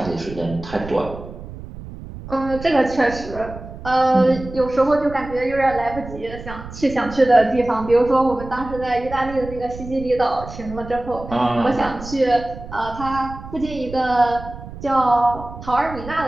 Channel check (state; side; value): noise; right; rumble, 13 dB below the sound